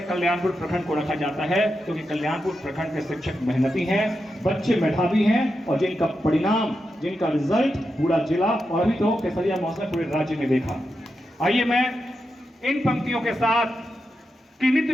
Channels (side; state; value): both; normal; correlation 0.88